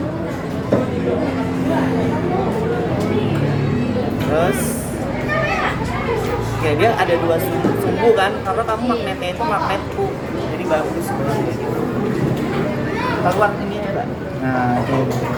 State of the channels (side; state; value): both; identical; correlation 1.00